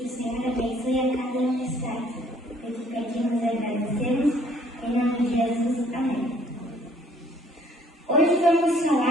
o Senhor abençoe a cada um que está aqui. Eu te pedimos e agradecemos, em nome de Jesus. Amém. Hoje vamos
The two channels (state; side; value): normal; both; correlation 0.60